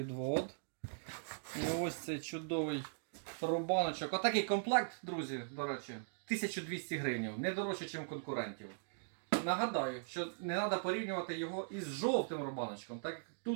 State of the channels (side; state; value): left; silent; digital silence